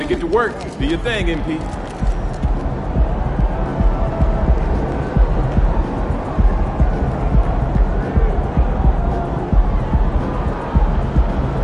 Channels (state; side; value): identical; both; correlation 1.00